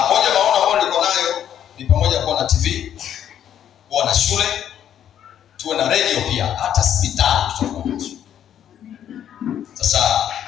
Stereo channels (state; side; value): quieter; right; 10.0 dB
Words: moja maono ambayo niko nayo ni pamoja kuwa na TV, kuwa na shule, tuwe na radio pia, hata hospitali tutakuwa nazo. Sasa